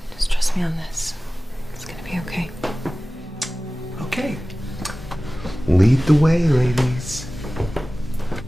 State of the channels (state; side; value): normal; both; correlation 0.97